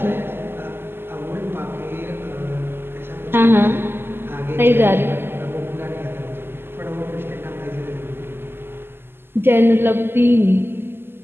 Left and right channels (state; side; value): late; left; 0.11 ms